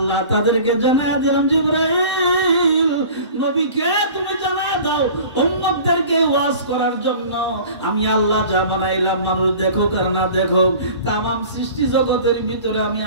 তাদেরকে জানায়া দিলাম, জিবরাইল নবীকে তুমি জানায়া দাও উম্মতদেরকে ওয়াজ করার জন্য আমি আল্লাহ যা বানাইলাম, মানুষ দেখুক আর না দেখুক, तमाम সৃষ্টি জগতের ভিতরে আমি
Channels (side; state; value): both; inverted; correlation -0.43